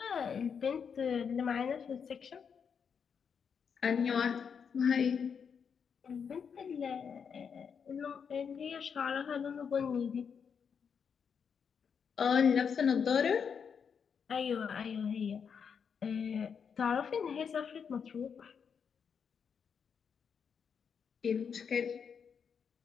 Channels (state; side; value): quieter; right; 6.7 dB